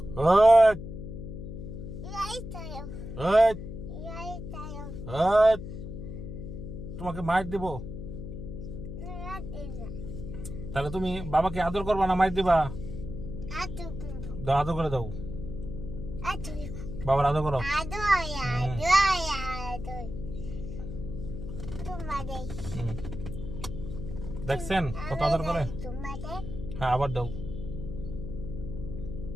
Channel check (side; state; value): left; noise; hum, 8 dB below the sound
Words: ওই Đây tay không? ওই Đây tay không? ওই তোমাকে মাইর দিব। Nó đi rồi. তাহলে তুমি বাবাকে আদর করবা না মাইর দিবা? Aduh, দাও, আদর করে দাও। aduh, বাবার আদর করো। aduh ya, aduh. Cuma deh. হুম। দেখছেন কত আদর করে? Cuma deh. হ্যাঁ, আবার দাও।